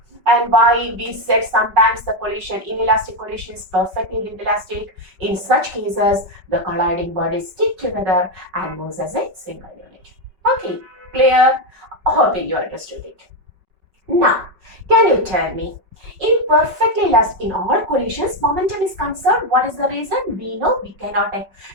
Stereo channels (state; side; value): late; left; 5.3 ms